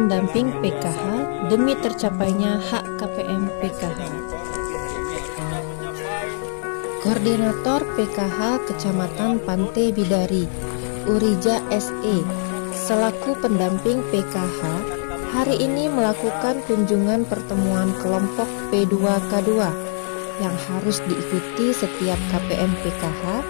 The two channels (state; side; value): silent; right; digital silence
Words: PKH demi tercapainya hak KPM PKH. Koordinator PKH Kecamatan Pantai Bidari, Urija SE, selaku pendamping PKH, hari ini melakukan kunjungan pertemuan kelompok P2K2 yang harus diikuti setiap KPM PKH